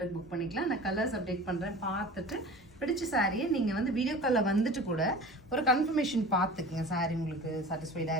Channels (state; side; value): normal; both; correlation 0.38